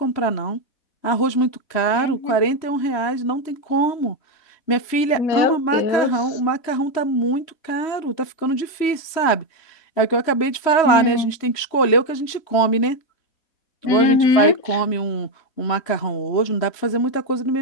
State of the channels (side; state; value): right; late; 3.1 ms